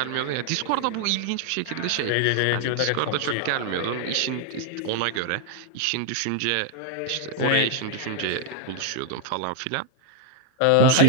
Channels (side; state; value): both; different; correlation 0.00